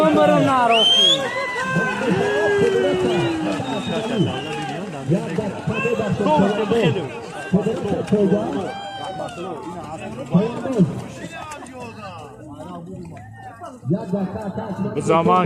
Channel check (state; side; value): identical; both; correlation 1.00